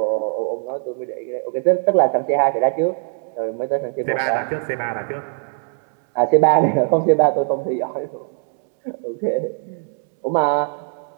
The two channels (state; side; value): silent; left; 65 dB below the other